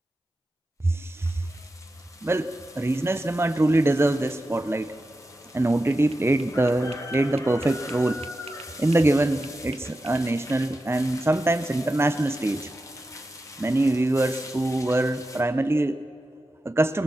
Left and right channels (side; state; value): both; normal; correlation 0.91